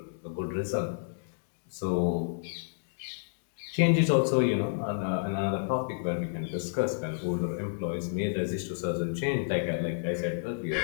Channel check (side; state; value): right; silent; digital silence